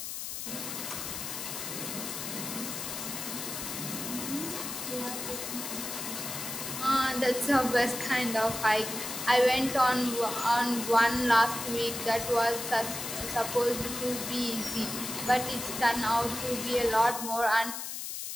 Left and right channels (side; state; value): left; noise; hiss, 6 dB below the sound